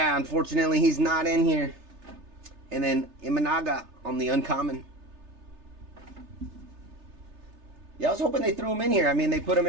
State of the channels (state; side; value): late; left; 3.3 ms